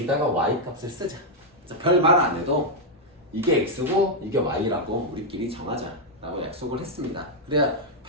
y값을 쓰자. 별 말 안 해도 이게 x고 이게 y라고 우리끼리 정하자 라고 약속을 했습니다. 그래야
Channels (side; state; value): both; normal; correlation -0.02